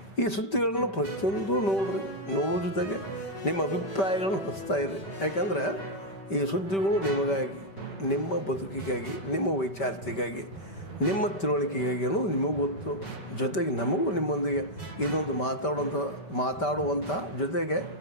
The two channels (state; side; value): late; right; 5.1 ms